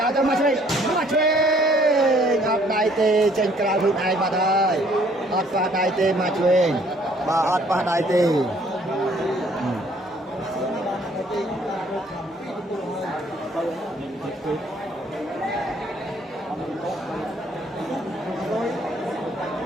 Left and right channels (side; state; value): both; normal; correlation 0.61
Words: ឲ្យទៅមកឆ្វេងអត់ដៃទេចេញក្រៅខ្លួនឯងបាត់ហើយអត់ប៉ះដៃទេមកឆ្វេងបាទអត់ប៉ះដៃទេ